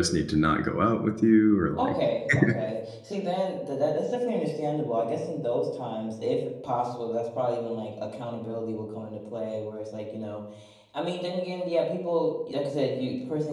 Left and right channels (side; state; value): both; identical; correlation 1.00